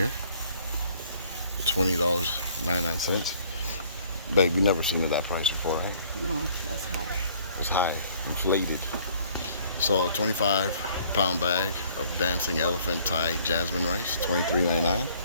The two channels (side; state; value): both; inverted; correlation -0.59